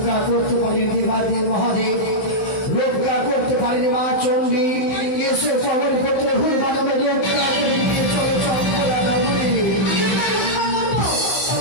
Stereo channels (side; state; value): right; late; 15 ms